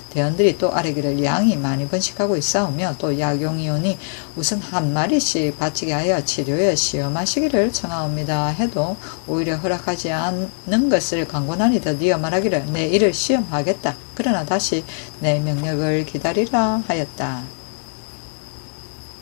대원들이 또 아뢰기를 양이 많이 번식하고 있사오며 또 약용이 오니 우선 한 마리씩 바치게 하여 치료에 시험하시기를 청하옵니다 해도 오히려 허락하지 않는 것을 강권하니 드디어 말하기를 내 이를 시험하겠다. 그러나 다시 내 명령을 기다리라 하였다.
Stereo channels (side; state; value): right; silent; digital silence